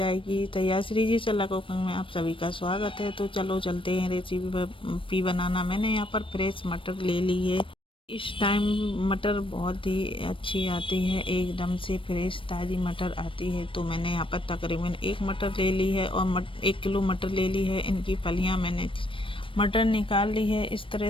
तैयार। श्री जी सलाह कुकिंग में आप सभी का स्वागत है। तो चलो चलते हैं रेसिपी बनाना। मैंने यहाँ पर फ्रेश मटर ले ली है। इस टाइम मटर बहुत ही अच्छी आती है, एकदम से फ्रेश ताज़ी मटर आती है। तो मैंने यहाँ पर तकरीबन 1 मटर ले ली है और 1 किलो मटर ले ली है। इनकी फलियाँ मैंने मटर निकाल ली है। इस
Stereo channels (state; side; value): late; right; 0.25 ms